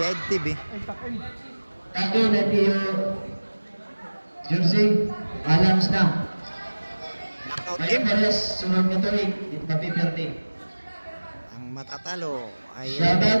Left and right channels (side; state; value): both; inverted; correlation -1.00